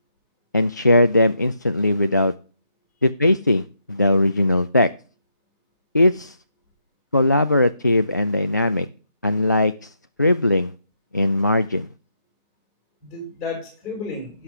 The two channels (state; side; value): inverted; both; correlation -0.79